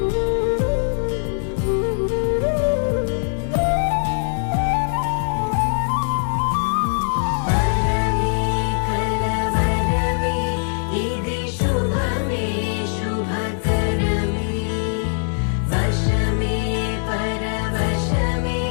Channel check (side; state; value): right; silent; 63 dB below the other